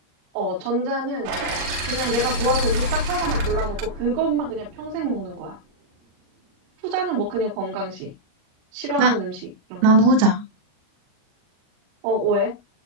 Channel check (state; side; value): late; left; 38 ms